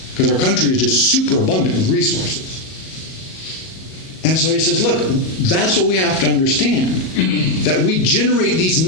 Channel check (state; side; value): late; right; 38 ms